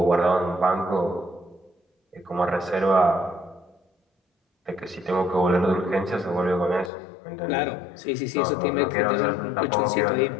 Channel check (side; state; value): right; drops out; at 6.9 s